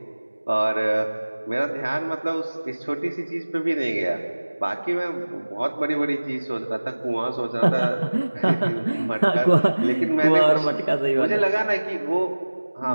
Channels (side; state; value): both; inverted; correlation -1.00